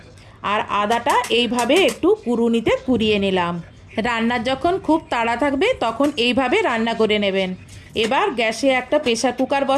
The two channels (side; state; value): both; identical; correlation 1.00